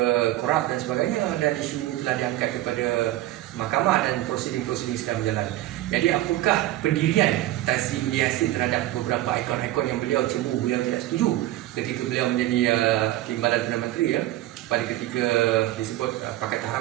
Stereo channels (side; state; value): left; quieter; 15.5 dB